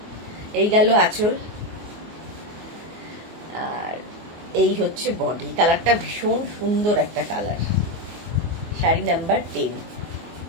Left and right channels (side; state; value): left; late; 24 ms